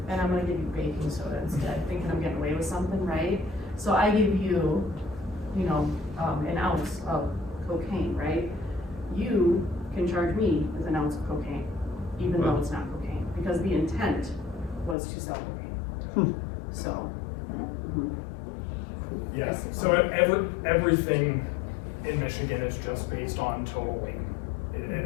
and I'm gonna give you baking soda instead, thinking I'm getting away with something, right? So I give you, you know, an ounce of cocaine, right? You can charge me with an ounce of cocaine, even though it's not cocaine, because the intent was to sell cocaine. So. mhm. Yeah, so everything in Michigan is just based on total weight.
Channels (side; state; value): right; drops out; at 15.0 s